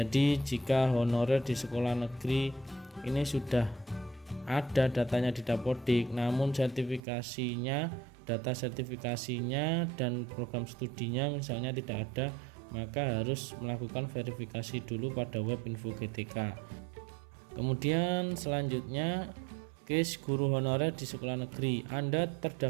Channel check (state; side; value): drops out; left; at 7.0 s